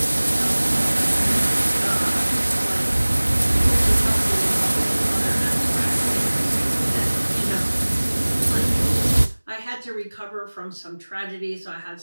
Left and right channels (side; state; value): both; inverted; correlation -1.00